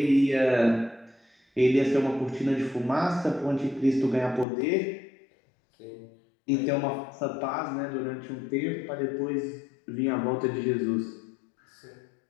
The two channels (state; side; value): drops out; right; at 4.5 s